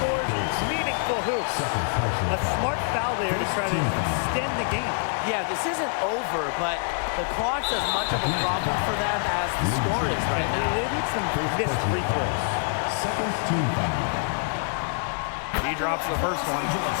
meaningful hoops. A smart foul there to try to extend the game. Yeah, this isn't over, but the clock's as much of a problem for them as the score is right now. They need some missed free throws. Second team foul. He drops the first one,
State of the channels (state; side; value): silent; right; digital silence